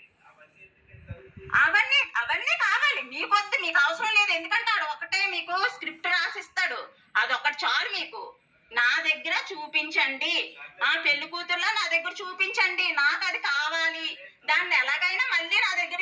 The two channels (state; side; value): identical; both; correlation 1.00